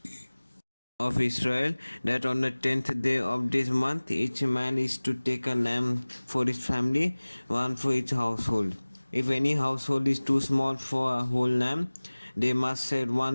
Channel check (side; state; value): both; inverted; correlation -1.00